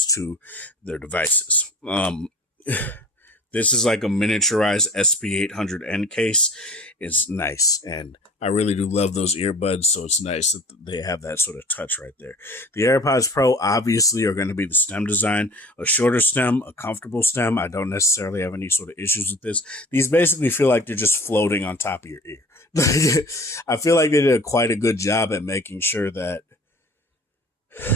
to their devices. This is like a miniaturized SP800N case. It's nice. And I really do love those earbuds. So it's nice that they have that sort of touch right there. The AirPods Pro obviously are going to be the stem design, a shorter stem, a comfortable stem. I don't necessarily have any sort of issues with this. These basically feel like they're just floating on top of your ear. I feel like they did quite a good job at making sure that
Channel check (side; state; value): both; normal; correlation 0.44